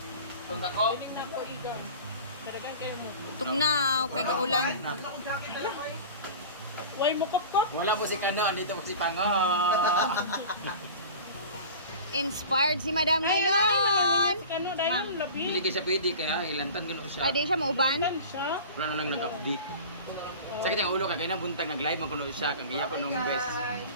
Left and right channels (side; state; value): both; inverted; correlation -0.37